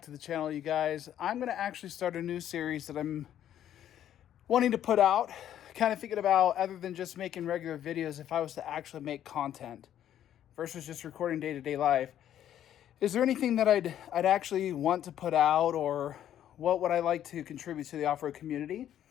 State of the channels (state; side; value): quieter; right; 10.9 dB